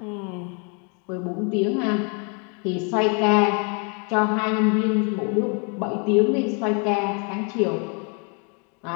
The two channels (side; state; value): right; quieter; 36.3 dB